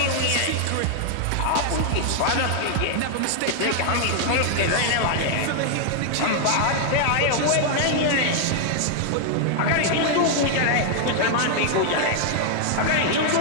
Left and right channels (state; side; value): different; both; correlation 0.00